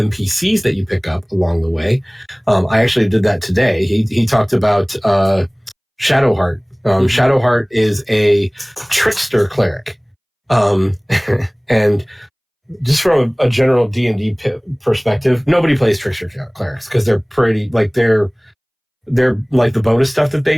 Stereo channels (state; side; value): identical; both; correlation 1.00